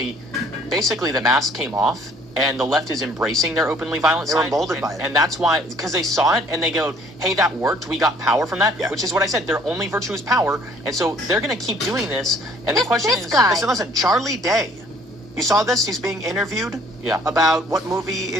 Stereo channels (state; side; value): normal; both; correlation 0.58